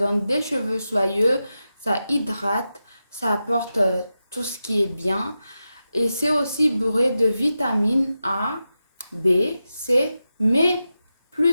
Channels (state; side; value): inverted; both; correlation -0.91